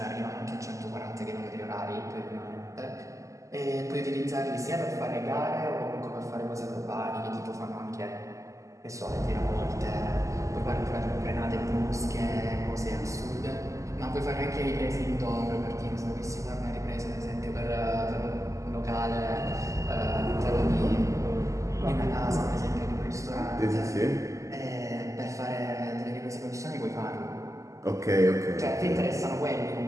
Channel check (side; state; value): left; late; 0.16 ms